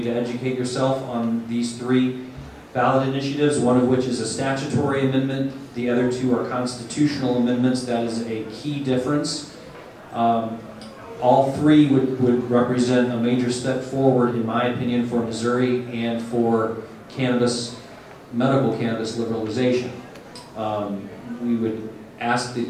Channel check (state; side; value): identical; both; correlation 1.00